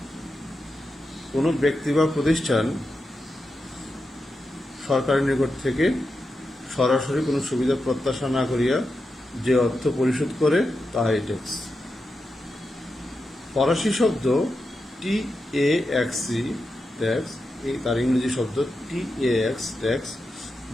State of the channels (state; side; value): normal; both; correlation 0.89